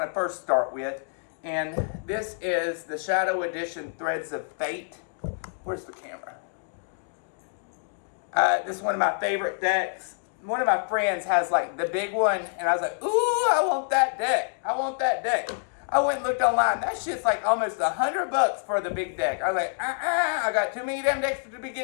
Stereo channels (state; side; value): silent; right; digital silence